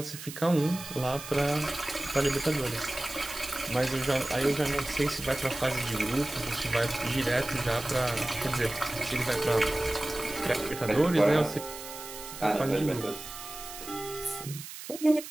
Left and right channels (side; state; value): right; noise; hiss, 12 dB below the sound